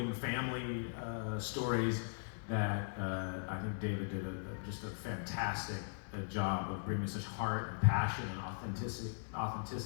family stories that I think David did just a fantastic job of bringing such heart and passion and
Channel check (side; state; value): right; silent; digital silence